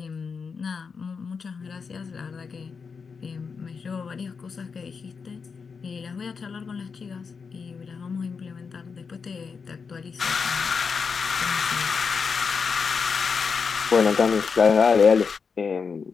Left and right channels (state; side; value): quieter; right; 5.5 dB